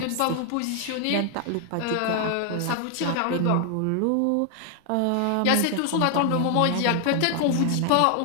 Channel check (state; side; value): different; both; correlation 0.00